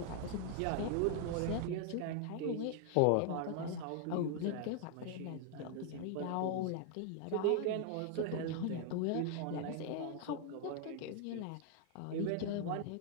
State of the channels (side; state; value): both; different; correlation 0.00